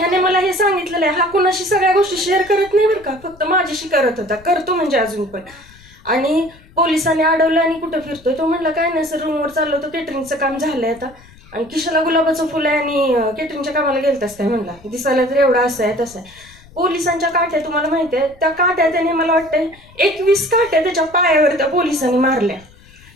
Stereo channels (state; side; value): noise; left; rumble, 24 dB below the sound